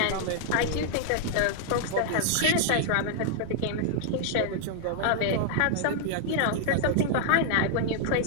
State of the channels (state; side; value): different; both; correlation -0.01